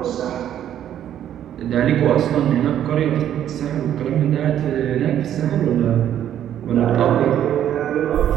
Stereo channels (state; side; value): quieter; left; 10.7 dB